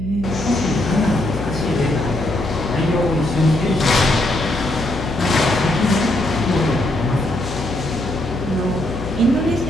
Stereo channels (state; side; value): noise; left; hum, 9 dB below the sound